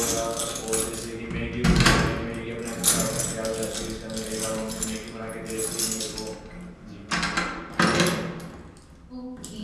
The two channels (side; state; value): both; identical; correlation 1.00